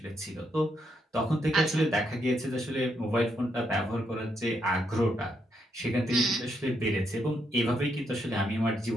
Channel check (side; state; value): both; normal; correlation 0.78